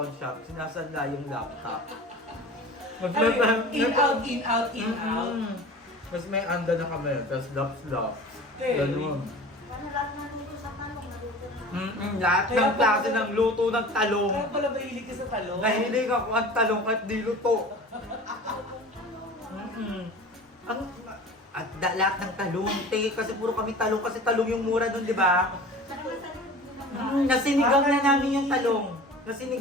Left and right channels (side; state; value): both; normal; correlation 0.39